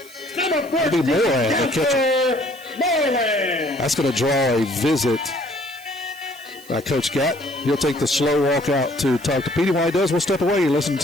That'll be Moran, the catcher. That's going to draw a visit by Coach Gatt. He'll take the slow walk out to talk to Petey. While he does, we'll step away. You're listening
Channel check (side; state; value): right; noise; hiss, 21 dB below the sound